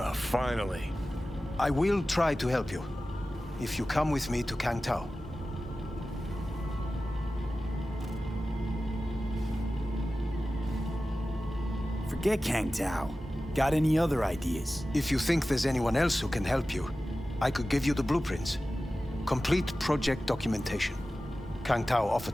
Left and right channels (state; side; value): normal; both; correlation 0.95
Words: finally. I will try to help you. If you come with me to Kang Tao. Forget Kang Tao. Got any other ideas? If you think there's anyone else who can help you, I could give you the blueprints. Complete project documentation. Kang Tao